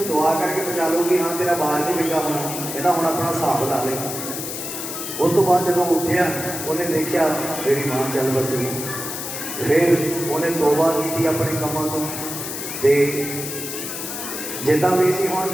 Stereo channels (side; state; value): left; noise; hiss, 6 dB below the sound